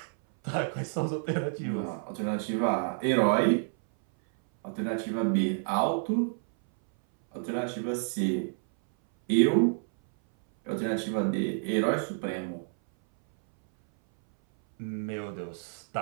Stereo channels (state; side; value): silent; left; 59 dB below the other